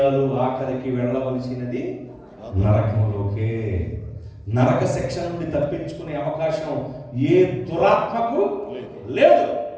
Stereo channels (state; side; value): identical; both; correlation 1.00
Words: ఆఖరికి వెళ్ళవలసినది నరకంలోకే. నరక శిక్ష నుండి తప్పించుకునే అవకాశం ఏ దురాత్మకు లేదు.